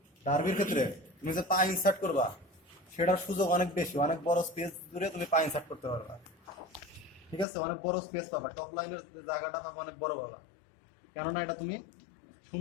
ডার্বির ক্ষেত্রে তুমি যে পা ইনসার্ট করবা সেটার সুযোগ অনেক বেশি, অনেক বড় স্পেস জুড়ে তুমি পা ইনসার্ট করতে পারবা। ঠিক আছে, অনেক বড় স্পেস পাবা, টপ লাইনের জায়গাটা পাবা অনেক বড় পাবা। কেননা এটা তুমি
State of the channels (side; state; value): right; drops out; at 7.5 s